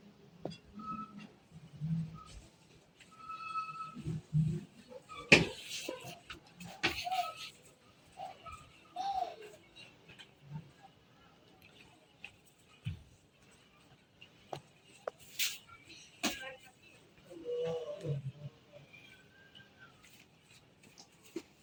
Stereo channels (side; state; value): both; identical; correlation 1.00